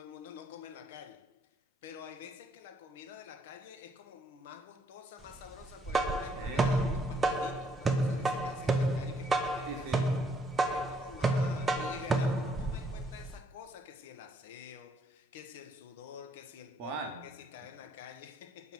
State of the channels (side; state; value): both; normal; correlation 0.71